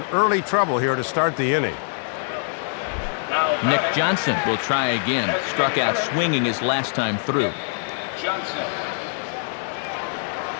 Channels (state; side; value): silent; right; 63 dB below the other